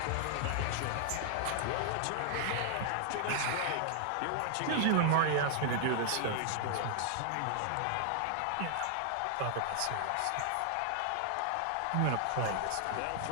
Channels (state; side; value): different; both; correlation 0.00